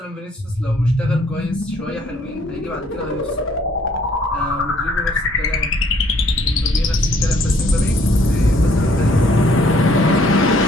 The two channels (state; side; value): normal; both; correlation 0.62